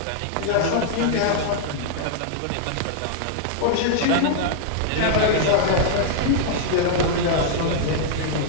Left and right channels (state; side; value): different; both; correlation -0.01